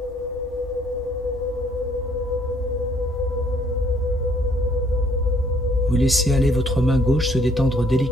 Vous laissez aller votre main gauche se détendre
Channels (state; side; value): normal; both; correlation 0.64